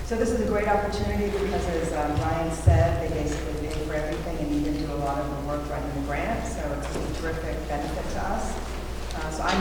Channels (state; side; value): identical; both; correlation 1.00